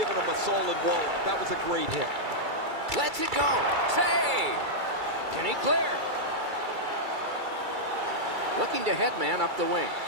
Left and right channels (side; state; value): left; late; 2.3 ms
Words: them a solid wall. That was a great hit. Lets it go. Save. Can he clear? Looking to headman up the wing.